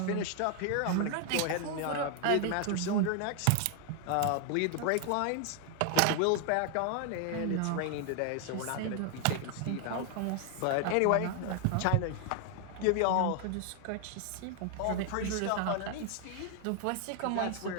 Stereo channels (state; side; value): different; both; correlation 0.00